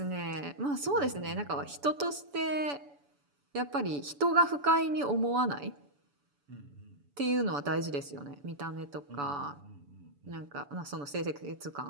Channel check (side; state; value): left; late; 7.0 ms